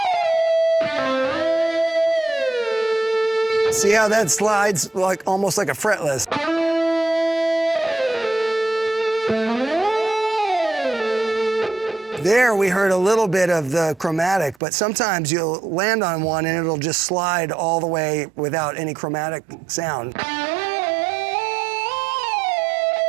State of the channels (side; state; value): left; drops out; at 14.6 s